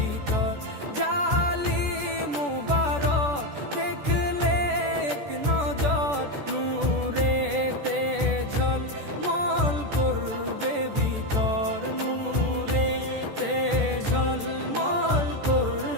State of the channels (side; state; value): left; late; 14 ms